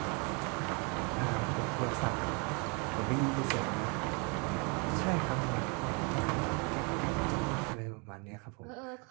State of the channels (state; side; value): quieter; left; 32.6 dB